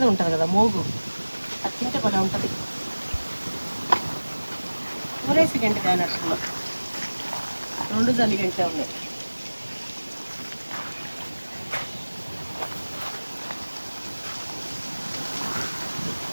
ఉంటుంది కదా మోగు, అది తింటే కూడా ఉంటుంది. ఊరేసి గంట కానట్టులో 2 జల్లి గంటే ఉన్నాయి.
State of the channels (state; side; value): inverted; both; correlation -1.00